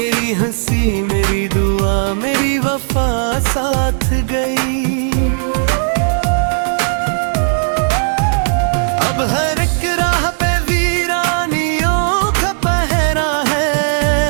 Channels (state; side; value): silent; left; 61 dB below the other